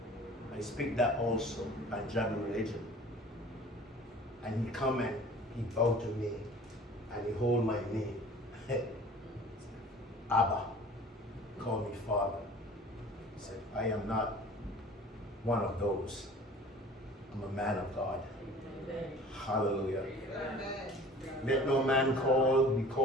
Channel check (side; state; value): both; normal; correlation 0.46